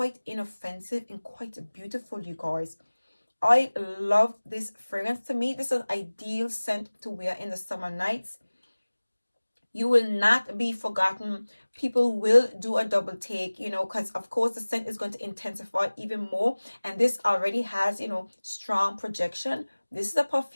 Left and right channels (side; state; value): both; inverted; correlation -1.00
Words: inoffensive and quite beautiful, you guys. I love this fragrance. To me, this is an ideal scent to wear in the summer nights. You will not be forgotten. People will do a double take, because of course the scent is going to intensify even more. And this already has, strong projection. This is a